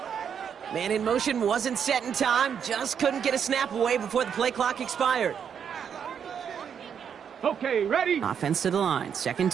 Man in motion wasn't set in time. Just couldn't get a snap away before the play clock expired. Okay, ready? Offense to the line. Second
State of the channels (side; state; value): left; quieter; 7.7 dB